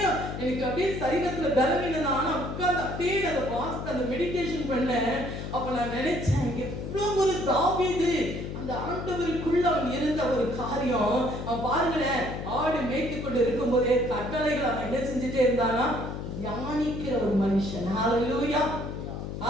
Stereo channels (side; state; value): left; noise; hum, 6 dB below the sound